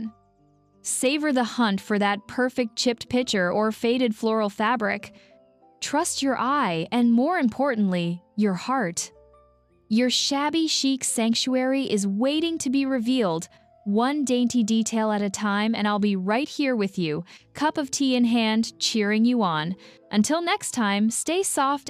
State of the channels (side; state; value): both; identical; correlation 1.00